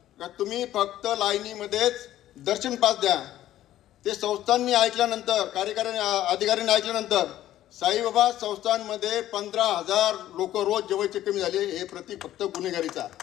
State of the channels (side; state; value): right; quieter; 13.2 dB